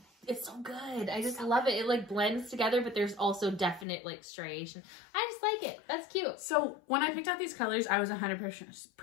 It's so good. I just love it. It like blends together, but there's also definite like striation. I just like it. That's cute. So when I picked out these colors, I was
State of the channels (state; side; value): drops out; right; at 3.9 s